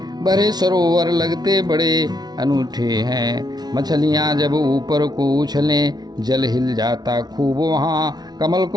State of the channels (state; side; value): late; left; 0.19 ms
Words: भरे सरोवर लगते बड़े अनूठे हैं। मछलियां जब ऊपर को उछलें जल हिल जाता खूब वहाँ। कमल